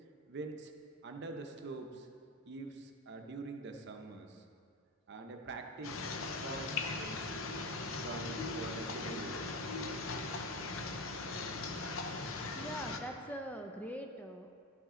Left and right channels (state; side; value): normal; both; correlation 0.22